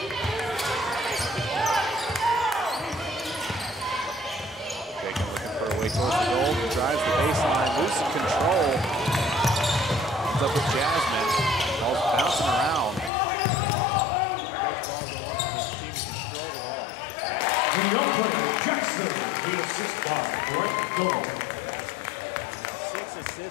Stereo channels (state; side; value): drops out; right; at 13.1 s